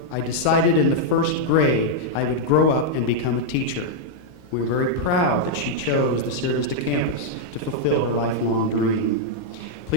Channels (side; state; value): right; late; 20 ms